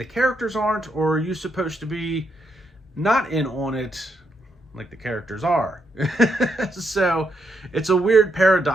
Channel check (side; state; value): both; normal; correlation 0.79